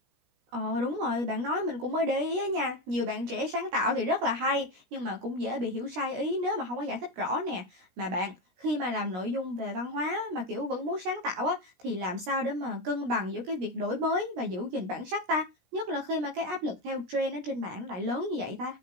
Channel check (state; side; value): late; left; 16 ms